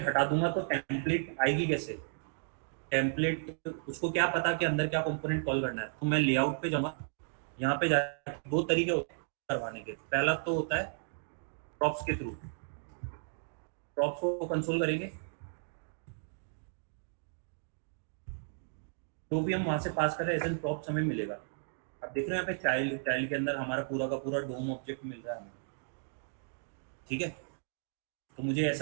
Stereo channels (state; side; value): silent; left; digital silence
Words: हटा दूंगा तो टेम्पलेट आएगी कैसे, टेम्पलेट उसको क्या पता कि अंदर क्या कंपोनेंट कॉल करना है। तो मैं लेआउट पे जाऊंगा, यहाँ पे जाके दो तरीके होते हैं करवाने के। पहला तो होता है प्रॉप्स के थ्रू, प्रॉप्स को कंसोल करेंगे, जो भी हम वहां से पास कर रहे हैं एज एन प्रॉप्स हमें मिलेगा। अब देख रहे हैं यहाँ पे चाइल्ड के अंदर हमारा पूरा का पूरा डोम ऑब्जेक्ट मिल रहा है हमें, ठीक है। तो मुझे